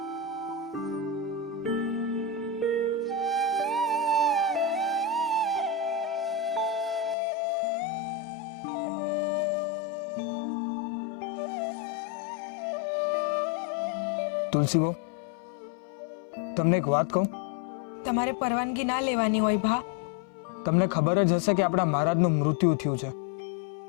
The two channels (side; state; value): right; drops out; at 7.2 s